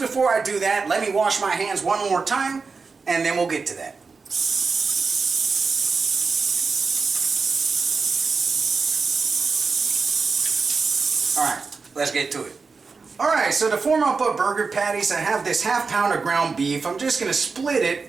before I do that, let me wash my hands one more time, and then we'll get to that. Alright, let's get to it. Alright, so to form up our burger patties, I have this ½ pound of ground beef. I'm just going to split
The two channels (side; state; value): left; quieter; 4.6 dB